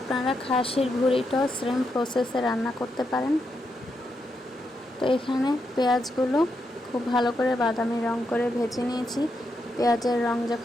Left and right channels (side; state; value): both; normal; correlation 0.83